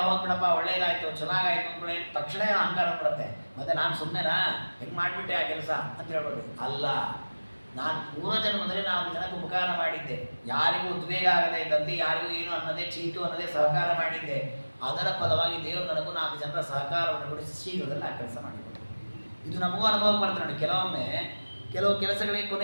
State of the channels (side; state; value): both; inverted; correlation -1.00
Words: ಹೋಗ್ಬಿಡಪ್ಪ, ಒಳ್ಳೇದಾಯ್ತು ಚೆನ್ನಾಗಾಯ್ತು ಅಂದ್ಕೊಳ್ಳಿ, ತಕ್ಷಣ ಅಹಂಕಾರ ಬಿಡುತ್ತೆ. ಮತ್ತೆ ನಾನು ಸುಮ್ಮನೆನಾ ಹೆಂಗೆ ಮಾಡಿಬಿಟ್ಟೆ ಆ ಕೆಲಸ ಅಂತ ಹೇಳ್ಬೋದು. ಅಲ್ಲ, ನಾನು ಪೂರ್ವ ಜನ್ಮದಲ್ಲಿ ನಾನು ಜನಕ್ಕೆ ಉಪಕಾರ ಮಾಡಿದ್ದೆ, ಯಾರಿಗೂ ಉದ್ವೇಗ ಆಗದೆ ಇದ್ದಂತೆ, ಯಾರಿಗೂ ಏನು ಅನ್ನದೇ ಚೀಟು ಅನ್ನದೇ ಸಹಕಾರ ಮಾಡಿದ್ದೆ. ಅದರ ಫಲವಾಗಿ ದೇವರು ನನಗೂ 4 ಜನರ ಸಹಕಾರವನ್ನು ಕೊಡಿಸಿ ಶೀಘ್ರದಲ್ಲಿ ಆ ಕೆಲಸ ಮಾಡಿಕೊಟ್ಟು. ಇದು ನಮಗೂ ಅನುಭವ ಬರ್ತದೆ ನೋಡಿ. ಕೆಲವೊಮ್ಮೆ ಕೆಲವು ಕೆಲಸಗಳಿಗೆ